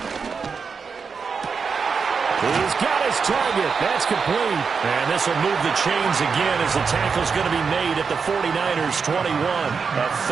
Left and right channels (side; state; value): left; quieter; 5.5 dB